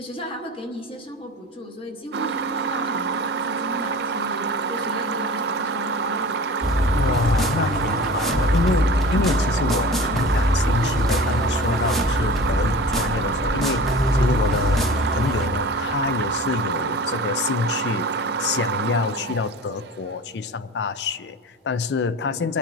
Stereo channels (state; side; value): normal; both; correlation 0.37